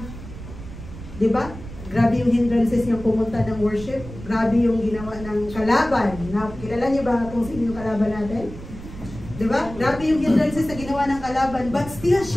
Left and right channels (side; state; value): right; noise; rumble, 13 dB below the sound